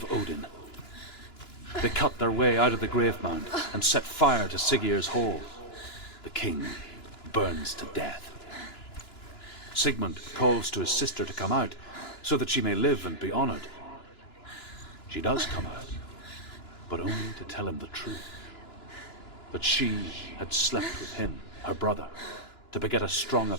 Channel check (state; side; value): late; right; 2.9 ms